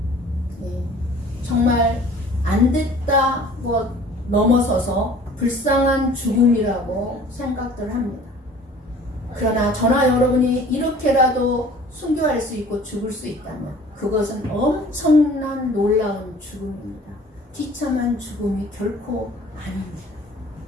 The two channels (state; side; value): normal; both; correlation 0.49